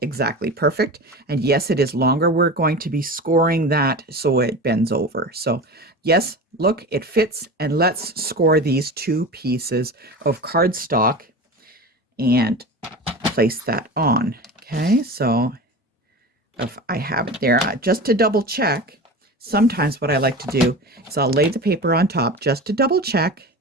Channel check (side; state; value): both; normal; correlation 0.30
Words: perfect. And yes, it is longer. We're going to be scoring that so it bends over. So yes, look, it fits. And let's score these 2 pieces of cardstock and place that on. Okay, so if I have it there, just to double check, sometimes what I like to do is I'll lay the paper on top just to double check.